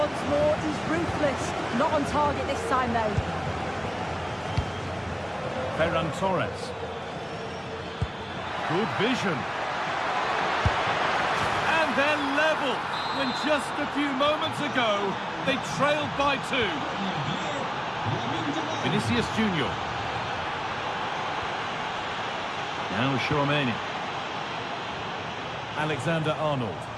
more he's ruthless. Not on target this time though. Ferran Torres. Good vision. And they're level when just a few moments ago they trailed by 2. Vinicius Junior. Now Chouameni. Alexander-Arnold.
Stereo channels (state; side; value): identical; both; correlation 1.00